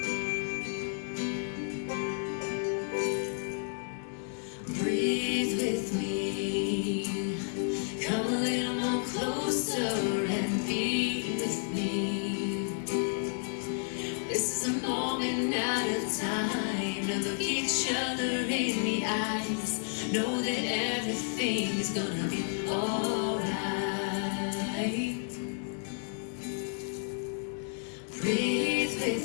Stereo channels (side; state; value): right; silent; 57 dB below the other